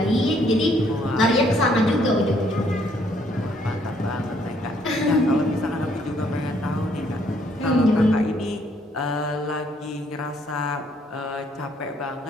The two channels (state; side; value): normal; both; correlation 0.67